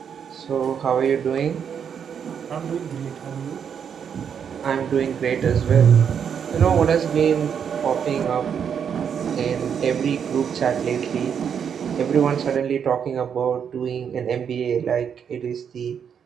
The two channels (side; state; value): left; quieter; 7.6 dB